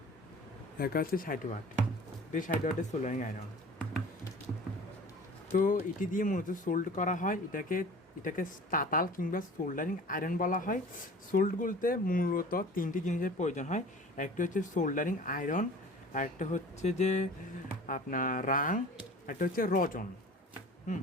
দেখা হচ্ছে, 60 ওয়াট। এটি 60 ওয়াটের সোল্ডারিং আয়রন। তো এটি দিয়ে মূলত সোল্ড করা হয়। এটাকে তাতাল কিংবা সোল্ডারিং আয়রন বলা হয়। সোল্ড বলতে মূলত তিনটি জিনিসের প্রয়োজন হয়। একটা হচ্ছে সোল্ডারিং আয়রন, একটা হচ্ছে যে আপনার রাং, একটা হচ্ছে রজন।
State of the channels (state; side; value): normal; both; correlation 0.43